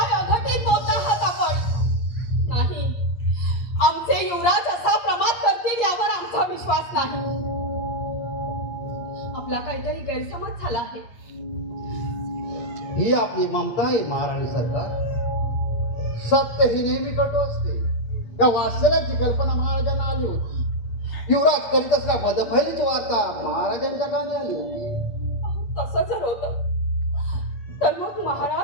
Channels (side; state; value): right; late; 8.5 ms